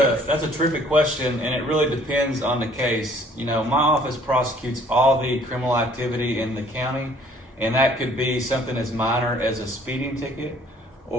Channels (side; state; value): both; normal; correlation 0.58